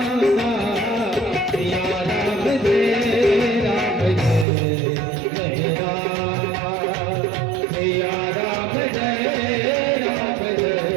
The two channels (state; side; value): drops out; left; at 4.5 s